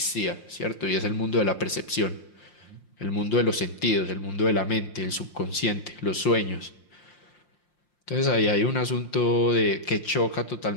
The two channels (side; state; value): right; late; 5.7 ms